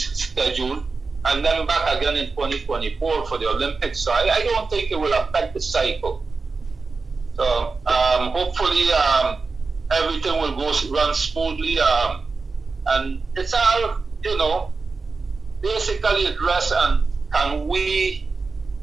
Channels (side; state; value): left; quieter; 4.2 dB